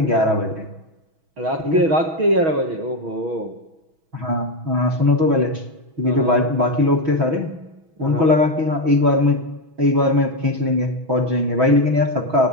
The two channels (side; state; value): left; late; 6.2 ms